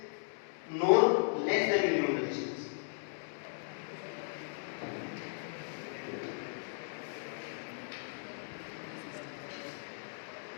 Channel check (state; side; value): silent; right; digital silence